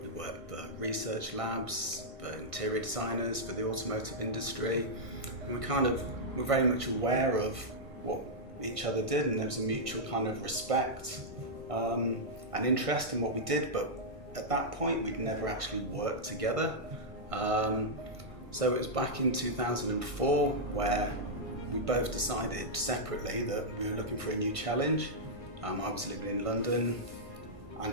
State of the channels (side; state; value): left; late; 1.6 ms